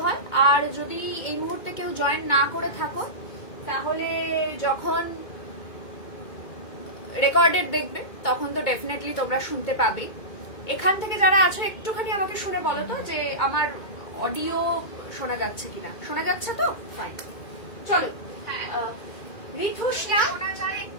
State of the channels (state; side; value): late; right; 2.2 ms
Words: হয়। আর যদি এই মুহূর্তে কেউ জয়েন না করে থাকো, তাহলে যখন রেকর্ডেড দেখবে তখন তো ডেফিনেটলি তোমরা শুনতে পাবে। এখান থেকে যারা আছো একটুখানি আমাকে শুনে বলো তো যে আমার অডিও শোনা যাচ্ছে কিনা। শোনা যাচ্ছে তো? ফাইন। চলো, ঋতুষ্ণা,